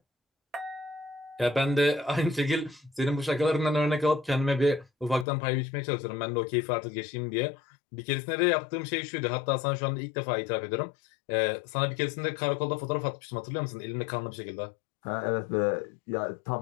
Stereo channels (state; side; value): drops out; right; at 5.2 s